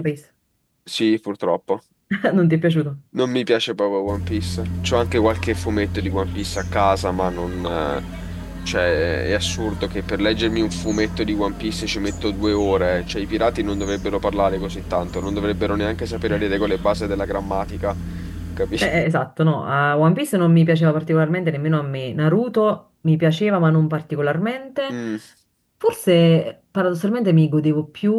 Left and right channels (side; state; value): both; identical; correlation 1.00